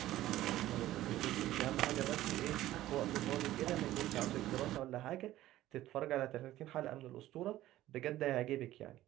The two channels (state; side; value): quieter; left; 14.7 dB